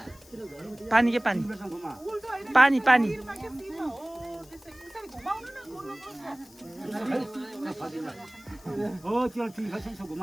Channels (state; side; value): noise; left; hiss, 24 dB below the sound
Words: पानी के पानी पानी पानी हो त्यो ठिक छ यसो